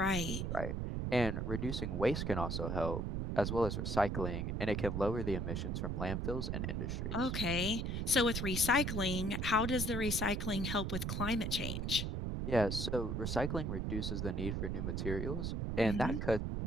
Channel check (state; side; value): noise; right; rumble, 1 dB below the sound